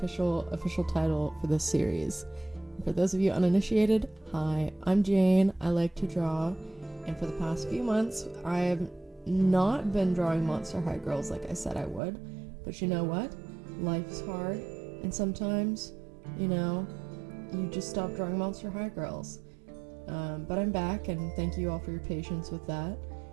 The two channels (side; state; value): left; drops out; at 12.0 s